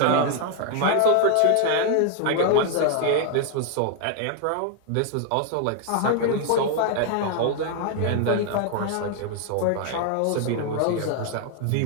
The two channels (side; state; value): both; different; correlation 0.00